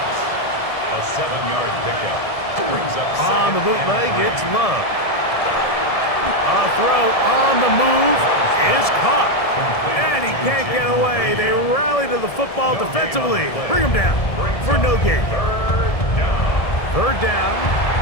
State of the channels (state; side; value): late; right; 1.7 ms